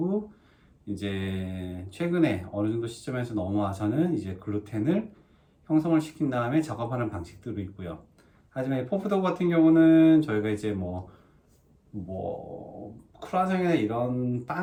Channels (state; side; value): identical; both; correlation 1.00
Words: 이제 최근에 어느 정도 시점에서 넘어와서는 이제 글루텐을 형성을 시킨 다음에 작업하는 방식들도 있고요. 하지만 포프도우 같은 경우는 저희가 이제 크루아상이나 이런